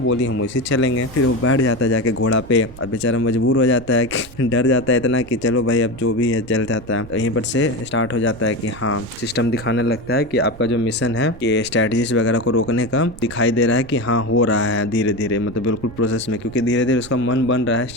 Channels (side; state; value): right; noise; rumble, 19 dB below the sound